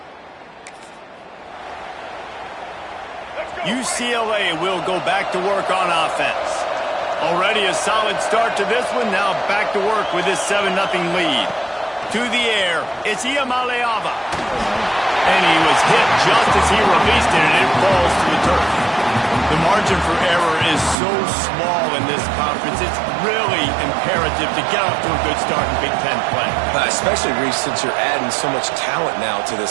UCLA will go back to work on offense. Already a solid start to this one. Now back to work with this 7-0 lead. To the air, it's UCLA Iowa. And he was hit just as he released it, and it falls to the turf. The margin for error is so small in this conference. It's really imperative to get off to a good start in Big Ten play. Especially, Reese, since you're adding so much talent now to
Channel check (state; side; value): drops out; left; at 21.0 s